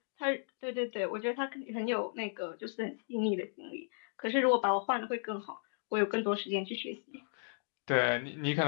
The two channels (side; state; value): right; silent; digital silence